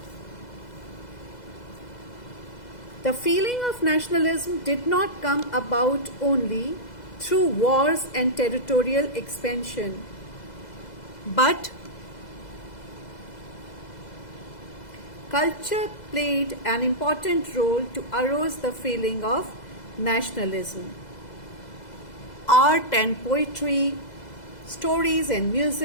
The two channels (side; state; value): right; late; 2.0 ms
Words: The feeling of nationalism did not come about only through wars and territorial expansion, but culture played an important role to arouse the feeling of nationalism. Art and poetry, stories and